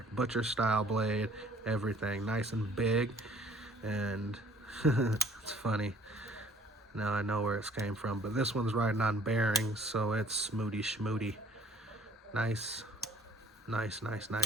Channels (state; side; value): normal; both; correlation 0.56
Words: Butcher style blade, everything. Nice and big, and it's funny. Now I know where it came from, but this one's riding on bearings, so it's smooty schmooty. Nice, nice, nice,